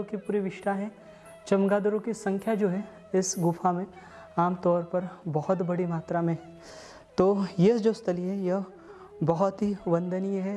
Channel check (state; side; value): identical; both; correlation 1.00